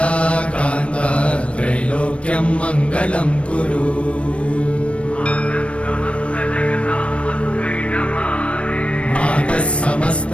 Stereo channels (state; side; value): late; right; 0.061 ms